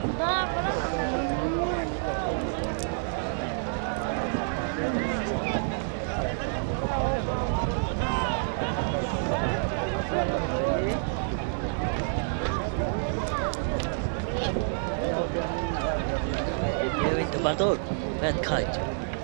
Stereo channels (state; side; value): silent; left; digital silence